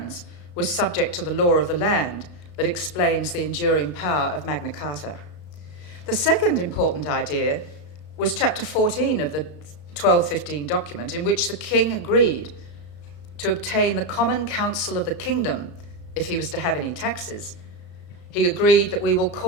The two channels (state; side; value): late; right; 33 ms